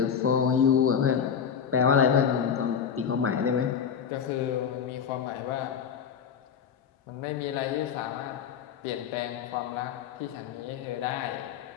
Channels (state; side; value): quieter; right; 7.5 dB